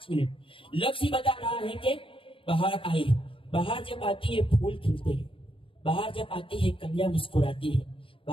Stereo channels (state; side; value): late; right; 0.26 ms